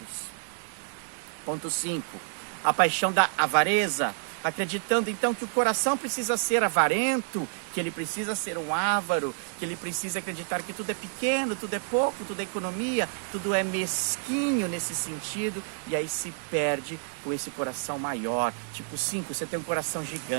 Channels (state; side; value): silent; left; digital silence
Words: Ponto 5. A paixão da avareza, acreditando então que o coração precisa ser avarento, que ele precisa ser um avaro, que ele precisa acreditar que tudo é pequeno, tudo é pouco, tudo é economia, tudo é mesquinho nesse sentido, e aí se perde com esse coração maior. Tipo 5, você tem um coração